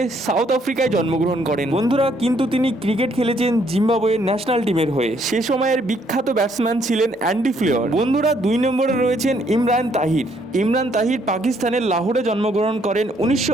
সাউথ আফ্রিকায় জন্মগ্রহণ করেন। বন্ধুরা, কিন্তু তিনি ক্রিকেট খেলেছেন জিম্বাবুয়ের ন্যাশনাল টিমের হয়ে। সে সময়ের বিখ্যাত ব্যাটসম্যান ছিলেন অ্যান্ডি ফ্লেয়ার। বন্ধুরা, 2 নম্বরে রয়েছেন ইমরান তাহির। ইমরান তাহির পাকিস্তানের লাহোরে জন্মগ্রহণ করেন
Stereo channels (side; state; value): both; normal; correlation 0.68